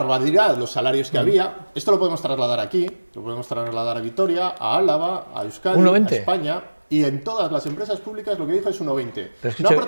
los salarios que había. Esto lo podemos trasladar aquí, lo podemos trasladar a Vitoria, a Álava, a Euskadi, a España... Y en todas las empresas públicas lo que dijo es 1,20. Escucha, no ha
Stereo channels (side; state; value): both; inverted; correlation -1.00